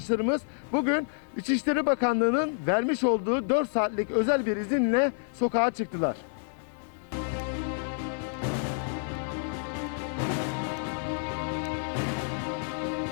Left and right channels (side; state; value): right; silent; 59 dB below the other